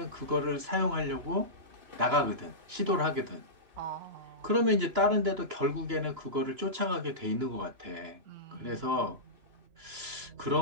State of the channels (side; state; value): left; late; 2.9 ms